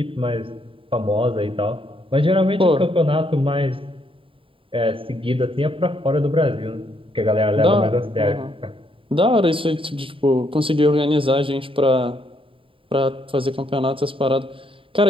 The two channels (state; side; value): late; left; 0.25 ms